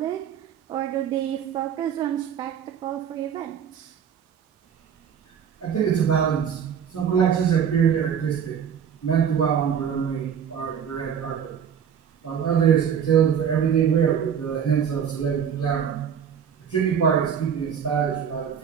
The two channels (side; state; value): left; quieter; 8.0 dB